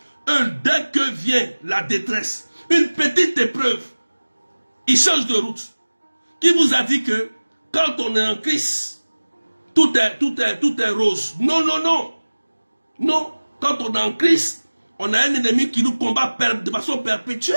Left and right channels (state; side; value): inverted; both; correlation -1.00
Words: dès que vient la détresse, une petite épreuve, ils changent de route. Qui vous a dit que quand on est en Christ, tout est rose? Non, non, non. Non, quand on est en Christ, on a un ennemi qui nous combat de façon